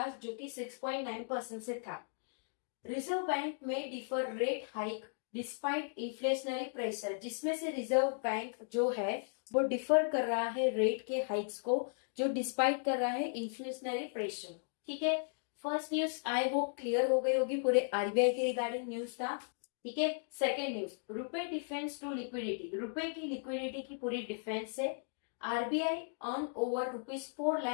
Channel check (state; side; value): silent; right; digital silence